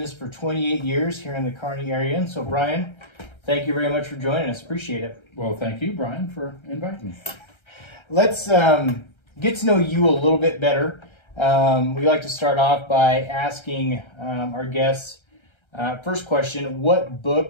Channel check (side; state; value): right; late; 1.3 ms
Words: for 28 years here in the Kearney area, and so Brian, thank you very much for joining us. Appreciate it. Well, thank you, Brian, for inviting me. Let's get to know you a little bit better. We like to start off by asking our guests, first question, what